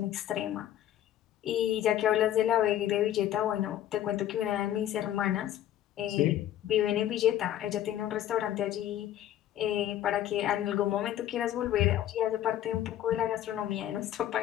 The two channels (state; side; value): quieter; right; 12.1 dB